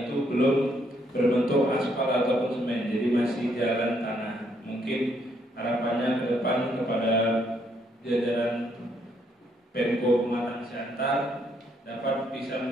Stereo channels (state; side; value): normal; both; correlation 0.72